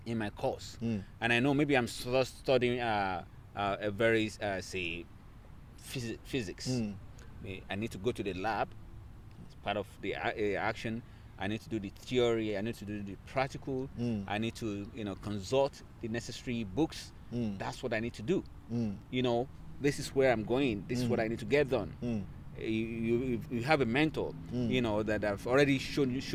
in my course, and I know maybe I'm studying a very say physics. I need to go to the lab. It's part of the action. I need to do the theory. I need to do the practical. I need to consult the necessary books. That's what I need to do. This is where I'm going. This is what I need to get done. You have a mentor, that I've already shown you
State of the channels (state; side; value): identical; both; correlation 1.00